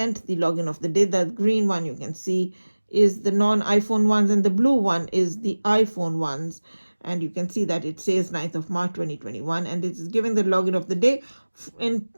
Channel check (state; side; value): inverted; both; correlation -1.00